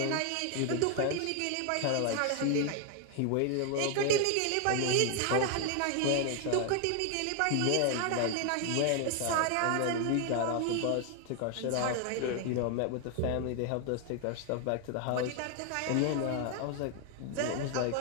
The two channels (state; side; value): different; both; correlation 0.00